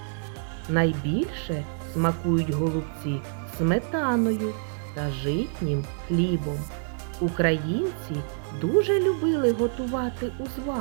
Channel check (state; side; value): silent; left; digital silence